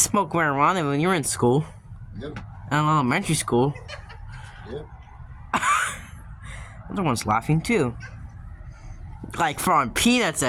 marijuana when you were in school. Yep. In elementary school. Yep. Other one's laughing too. Like throwing peanuts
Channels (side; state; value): both; identical; correlation 1.00